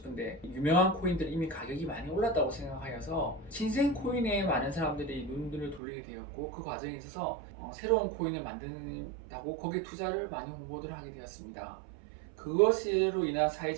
유명한 코인들은 이미 가격이 많이 올랐다고 생각하여서 신생 코인에 많은 사람들이 눈을 돌리게 되었고, 그 과정에 있어서 새로운 코인을 만든다고 거기에 투자를 많이 홍보를 하게 되었습니다. 그것으로 인한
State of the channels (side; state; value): left; drops out; at 5.8 s